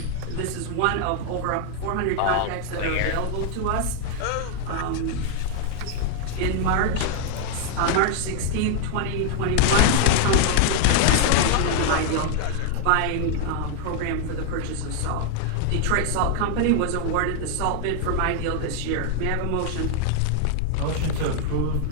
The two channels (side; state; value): both; different; correlation 0.00